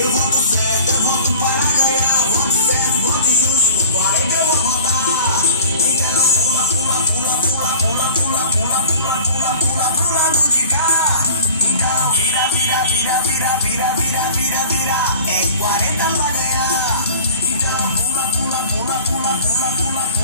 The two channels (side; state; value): both; inverted; correlation -0.42